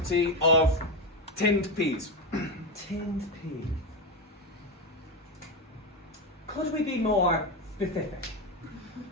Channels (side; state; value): both; normal; correlation 0.12